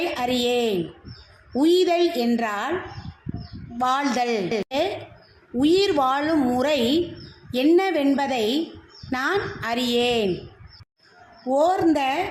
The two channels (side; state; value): both; identical; correlation 1.00